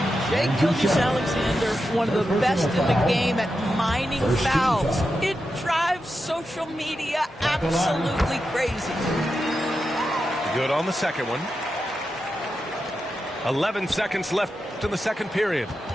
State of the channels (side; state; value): both; normal; correlation 0.89